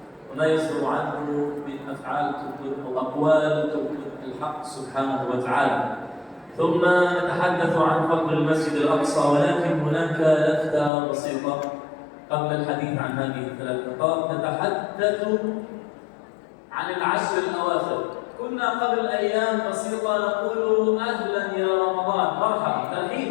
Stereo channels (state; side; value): drops out; right; at 10.9 s